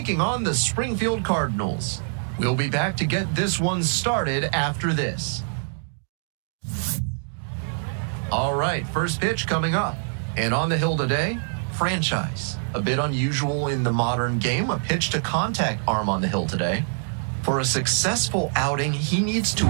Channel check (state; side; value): silent; left; digital silence